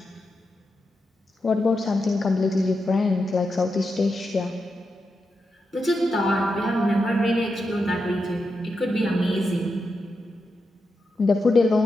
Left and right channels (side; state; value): both; normal; correlation 0.87